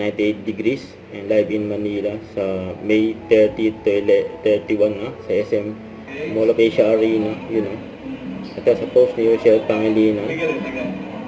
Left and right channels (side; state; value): both; identical; correlation 1.00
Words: 98 Degrees. And live in Manila sa May 30 to 31 sa SM Mall of Asia Arena. At sa post ni Rochelle Pangilinan.